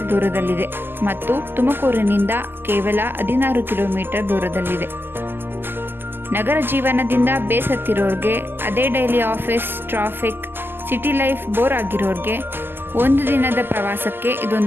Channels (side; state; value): left; late; 0.099 ms